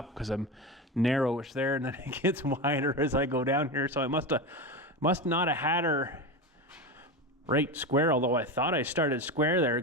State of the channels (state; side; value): normal; both; correlation 0.20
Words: because I'm narrowish there, and then it gets wider as I go down here. So I must not have had her right square, although I thought I started square there,